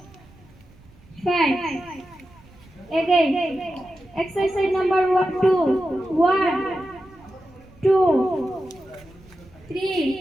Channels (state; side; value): noise; right; rumble, 26 dB below the sound